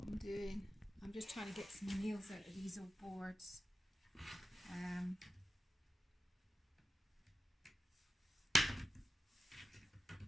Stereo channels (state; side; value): normal; both; correlation 0.92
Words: doing. I'm just trying to get some nails out of these old boards.